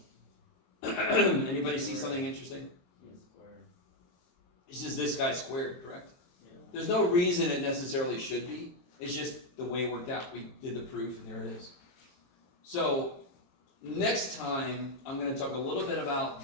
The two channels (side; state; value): right; late; 23 ms